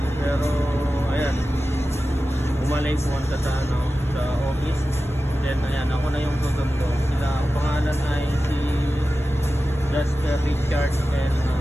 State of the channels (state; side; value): normal; both; correlation 0.94